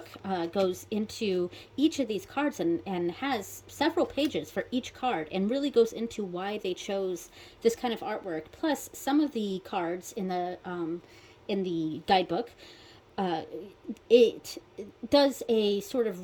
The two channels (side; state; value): both; identical; correlation 1.00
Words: goes into each of these cards and has several pages for each card, and really goes into why they chose this kind of artwork. Plus, some of the cards in the guidebook, it does a sort of